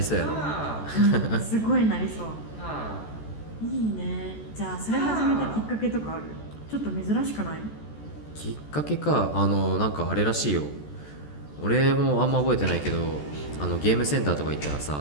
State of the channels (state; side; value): late; right; 14 ms